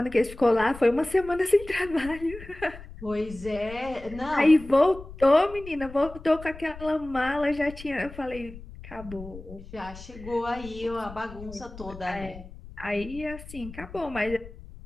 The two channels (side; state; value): left; noise; rumble, 15 dB below the sound